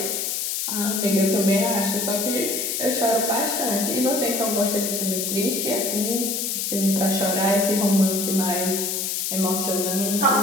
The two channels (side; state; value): left; noise; hiss, 1 dB below the sound